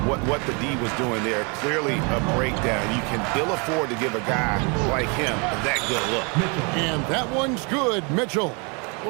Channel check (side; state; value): left; quieter; 32.8 dB